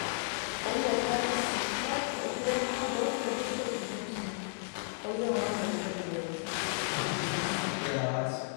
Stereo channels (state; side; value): silent; right; digital silence